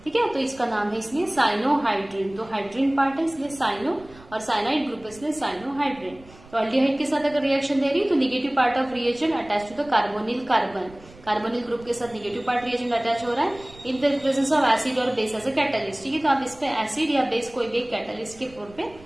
ठीक है, तो इसका नाम है इसलिए साइनोहाइड्रिन। तो हाइड्रिन पार्ट है इसलिए साइनो, और साइनाइड ग्रुप इसलिए साइनोहाइड्रिन। तो अल्डिहाइड के साथ अगर रिएक्शन दे रही तो negative part of reagent attach to the carbonyl carbon, carbonyl group के साथ निगेटिव पार्ट रिएजेंट अटैच हो रहा है in the presence of acid और बेस एज ए कैटलिस्ट। ठीक है, तो आप इस पे एसिड या बेस कोई भी कैटलिस्ट के तौर पे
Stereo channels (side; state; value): right; noise; rumble, 22 dB below the sound